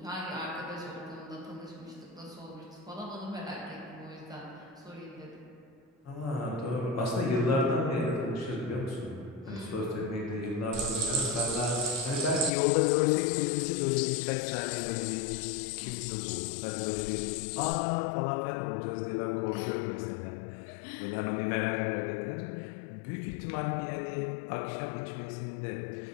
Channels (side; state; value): right; drops out; at 12.5 s